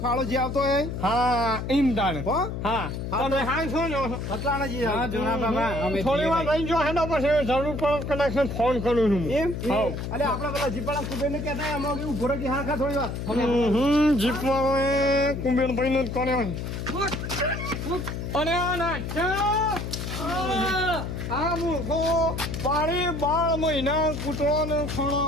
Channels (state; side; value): noise; left; hum, 5 dB below the sound